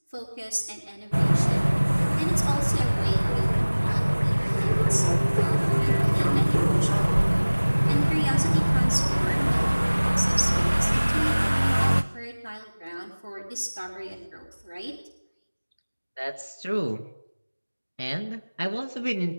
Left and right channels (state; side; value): inverted; both; correlation -1.00